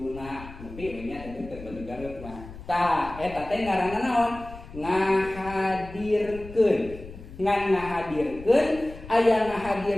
Nepi nya teh batu karut mah. Tah eta teh ngaranna naon? Ngahadirkeun. Ngan ngahadirkeun aya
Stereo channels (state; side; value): noise; left; rumble, 15 dB below the sound